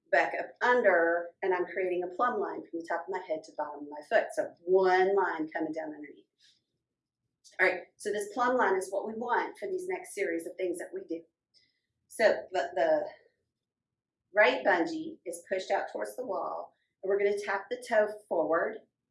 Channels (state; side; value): identical; both; correlation 1.00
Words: back up under, and I'm creating a plumb line from the top of my head to the bottom of my foot. So one line coming down underneath. All right, so this plumb line is what we want for these next series of things that we do. So the right bungee is pushed out towards the wall, and we're going to tap the toe forward